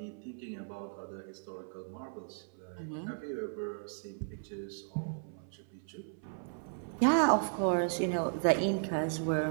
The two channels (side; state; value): left; silent; 54 dB below the other